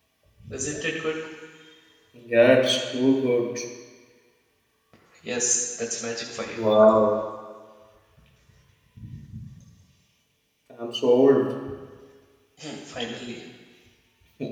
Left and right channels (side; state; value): both; identical; correlation 1.00